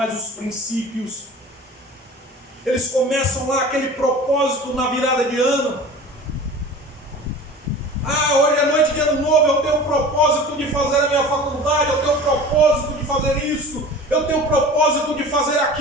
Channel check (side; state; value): both; normal; correlation 0.39